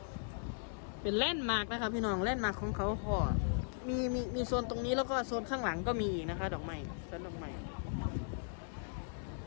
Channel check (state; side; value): silent; right; digital silence